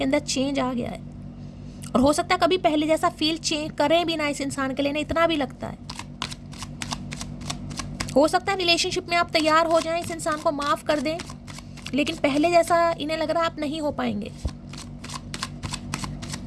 अंदर चेंज आ गया है, और हो सकता है कभी पहले जैसा फील चेंज करें भी ना इस इंसान के लिए, ना इतना भी लगता है। हो सकता है रिलेशनशिप में आप तैयार हो जाएं, इस इंसान को माफ़ कर दें, लेकिन पहले जैसा इन्हें लग रहा है आप नहीं हो पाएंगे।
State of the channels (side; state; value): both; identical; correlation 1.00